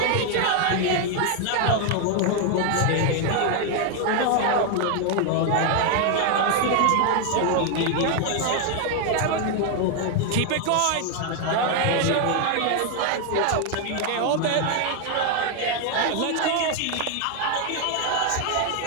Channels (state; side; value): different; both; correlation 0.01